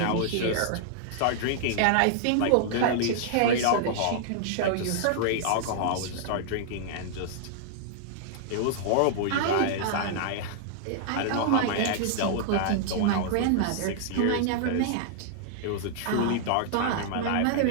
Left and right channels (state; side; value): different; both; correlation -0.01